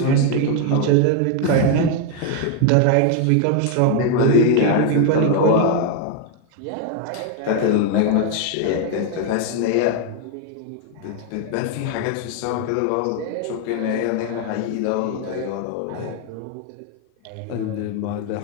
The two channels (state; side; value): different; both; correlation 0.00